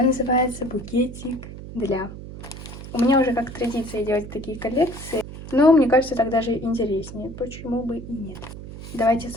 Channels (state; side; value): noise; right; hum, 12 dB below the sound